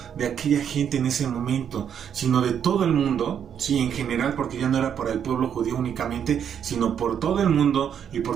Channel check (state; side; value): quieter; left; 8.4 dB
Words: de aquella gente en ese momento, sino de todo el mundo, sí, en general, porque ya no era para el pueblo judío únicamente, sino por todo el mundo y